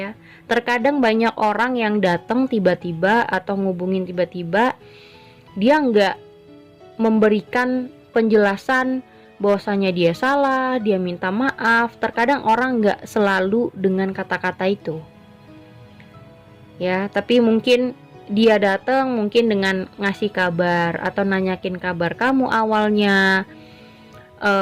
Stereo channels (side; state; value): both; identical; correlation 1.00